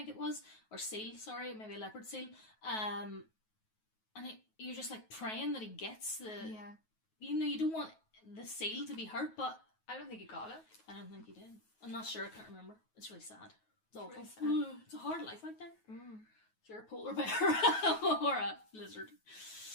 it was, or seal, sorry, maybe a leopard seal, and you're just like praying that he gets the, you don't want the seal to be hurt, but I don't think he got it. I don't think he did. I'm not sure, I can't remember. It's really sad. It's awful. Really sad. It's a hard life out there. If you're a polar bear or a lizard.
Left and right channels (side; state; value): right; late; 9.3 ms